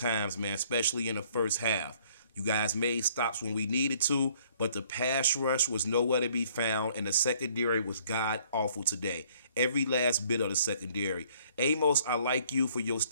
man, especially in the first half. You guys made stops when we needed to, but the pass rush was nowhere to be found, and the secondary was god awful today. Every last bit of the secondary. Amos, I like you for your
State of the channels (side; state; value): both; inverted; correlation -0.61